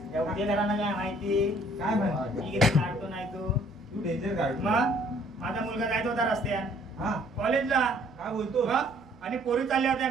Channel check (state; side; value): normal; both; correlation 0.60